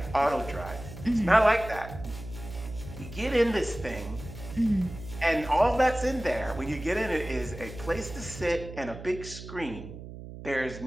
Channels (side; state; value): right; noise; hum, 12 dB below the sound